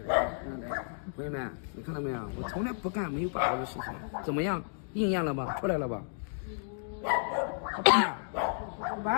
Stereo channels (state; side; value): silent; right; digital silence